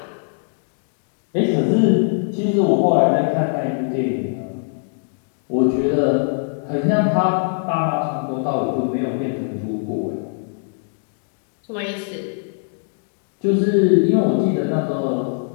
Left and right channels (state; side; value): silent; right; digital silence